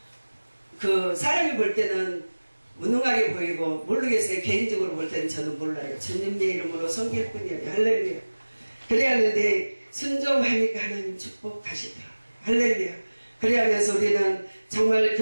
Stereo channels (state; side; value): inverted; both; correlation -1.00